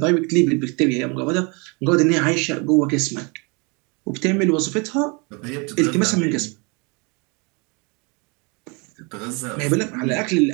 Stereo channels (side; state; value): left; quieter; 30.7 dB